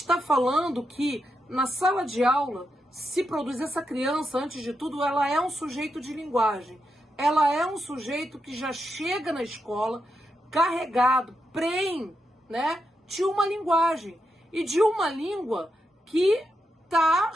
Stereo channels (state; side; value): normal; both; correlation 0.84